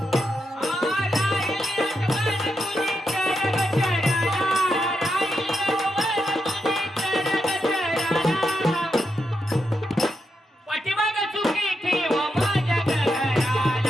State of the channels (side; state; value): both; normal; correlation 0.84